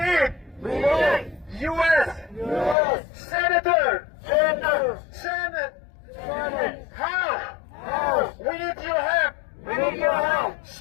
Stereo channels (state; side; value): drops out; right; at 2.8 s